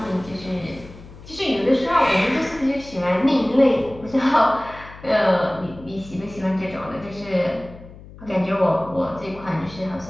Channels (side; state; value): left; noise; hum, 18 dB below the sound